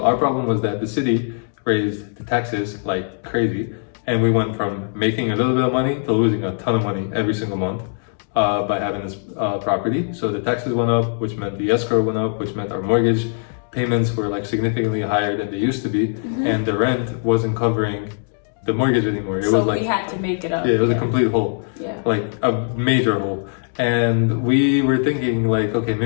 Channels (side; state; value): right; silent; digital silence